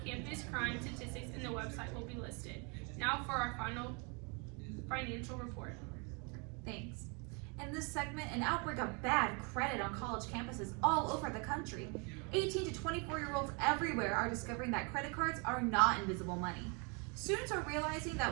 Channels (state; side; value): quieter; left; 33.3 dB